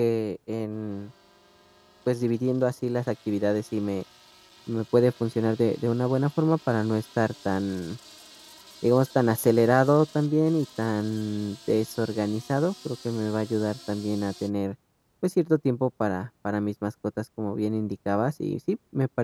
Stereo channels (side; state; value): both; identical; correlation 1.00